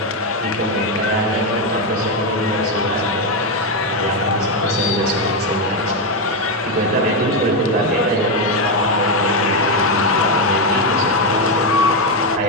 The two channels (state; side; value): normal; both; correlation 0.06